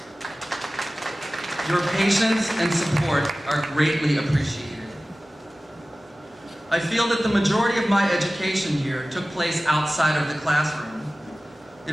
Your patience and support are greatly appreciated. I feel that the majority of my education here took place outside of the classroom.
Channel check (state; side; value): normal; both; correlation 0.97